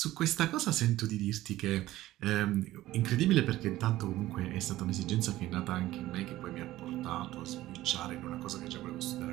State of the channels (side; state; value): left; quieter; 15.8 dB